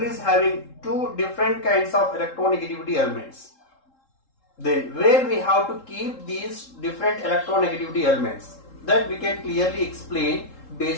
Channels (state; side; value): late; right; 3.7 ms